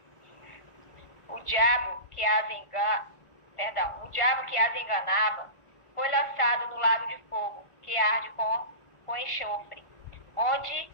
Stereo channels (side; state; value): right; late; 1.5 ms